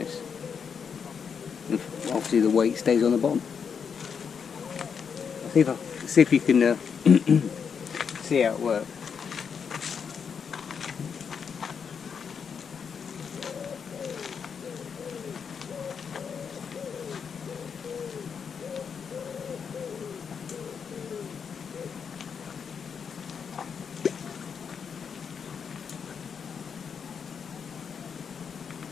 And obviously the weight stays on the bottom. I'll see if you can see how it works.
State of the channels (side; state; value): right; quieter; 6.6 dB